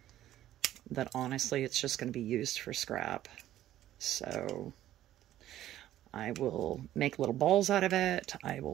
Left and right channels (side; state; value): left; quieter; 13.1 dB